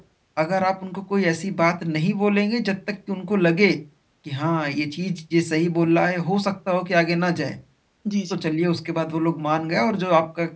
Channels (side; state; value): both; identical; correlation 1.00